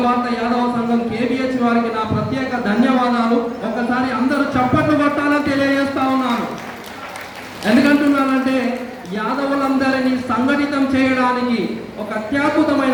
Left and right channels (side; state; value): both; identical; correlation 1.00